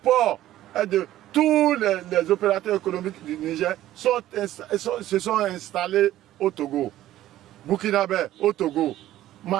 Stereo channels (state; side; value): quieter; left; 13.8 dB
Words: est de... Tous les opérateurs économiques du Niger se sont installés au Togo. Burkinabé au Togo.